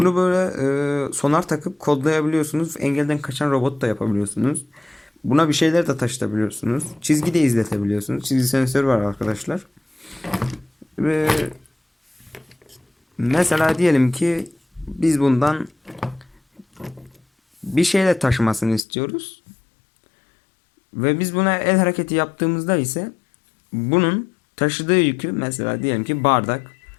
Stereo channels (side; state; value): right; drops out; at 18.9 s